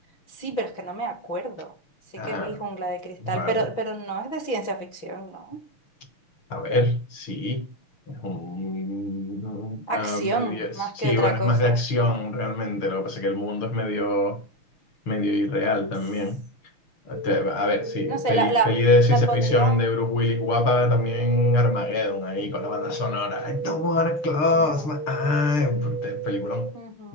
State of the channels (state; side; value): late; right; 6.6 ms